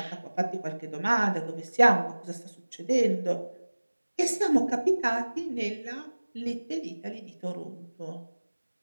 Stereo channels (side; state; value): both; inverted; correlation -1.00